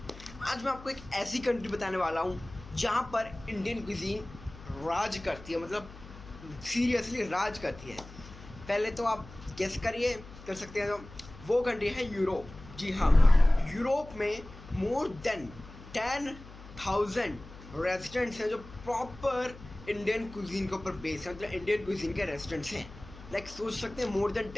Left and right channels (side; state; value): left; noise; hum, 17 dB below the sound